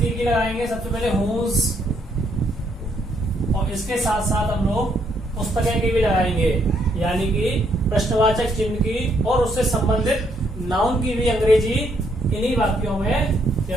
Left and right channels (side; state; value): both; normal; correlation 0.72